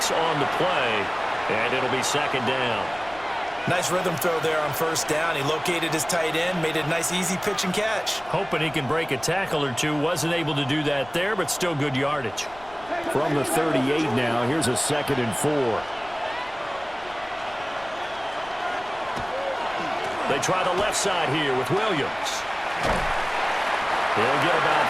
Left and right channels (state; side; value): noise; left; rumble, 22 dB below the sound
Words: on the play, and it'll be second down. Nice rhythm throw there on first down. He located his tight end, made it a nice easy pitch and catch. Hoping he can break a tackle or two. Wasn't able to do that there, but still good yardage. From the 38 now, here's a 2nd and 4. They try the left side here with Williams. He'll get about